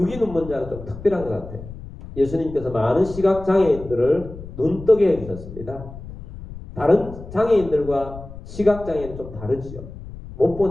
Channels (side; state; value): left; noise; rumble, 13 dB below the sound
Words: 눈먼 자는 좀 특별한 것 같아요. 예수님께서 많은 시각장애인들을 눈뜨게 해주셨습니다. 다른 장애인들과 시각장애는 좀 다르지요. 못